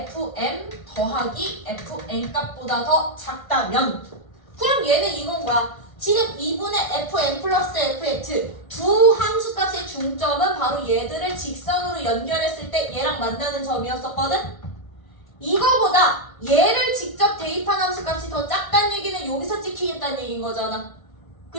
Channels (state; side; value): late; right; 1.5 ms